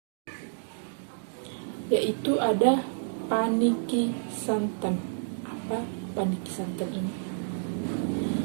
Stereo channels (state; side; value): silent; left; digital silence